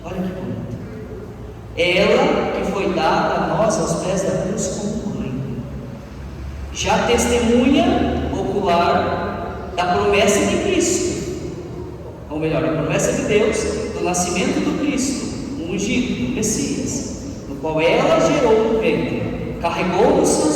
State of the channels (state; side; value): identical; both; correlation 1.00